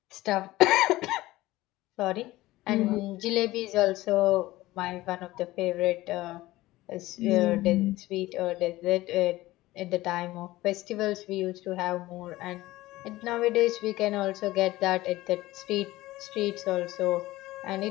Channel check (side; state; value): right; quieter; 17.7 dB